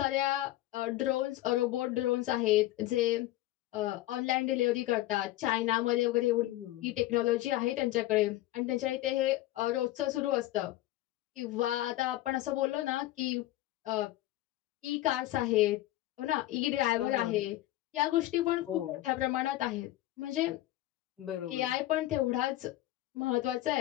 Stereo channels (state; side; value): quieter; right; 16.0 dB